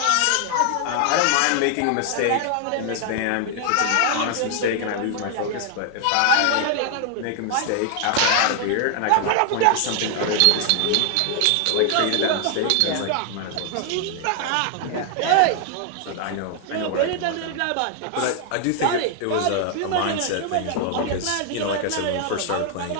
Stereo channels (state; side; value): different; both; correlation 0.00